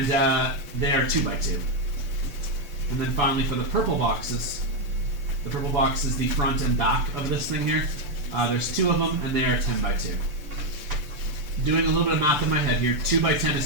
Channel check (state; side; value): late; left; 6.8 ms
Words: they are 2 by 2. And then finally for the purple boxes is the front and back of this thing here. There's 2 of them and they are 10 by 2. Doing a little bit of math in my head here. 2 by 10